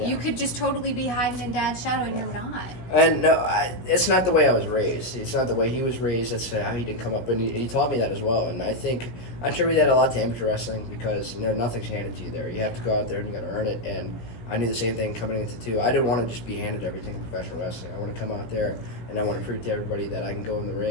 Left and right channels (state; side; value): late; right; 17 ms